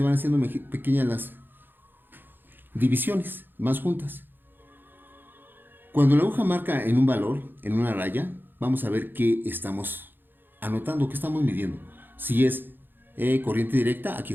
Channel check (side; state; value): left; late; 0.096 ms